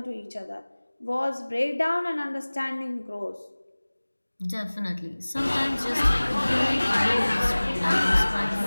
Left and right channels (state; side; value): inverted; both; correlation -1.00